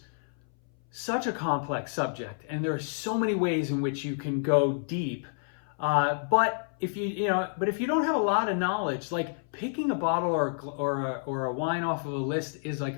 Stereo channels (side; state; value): right; silent; 58 dB below the other